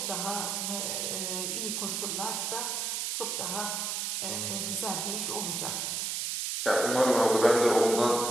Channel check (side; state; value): right; noise; hiss, 1 dB below the sound